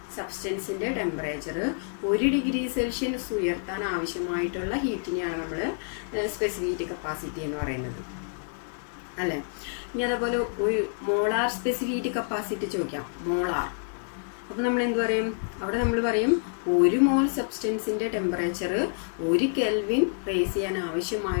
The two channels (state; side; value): silent; right; digital silence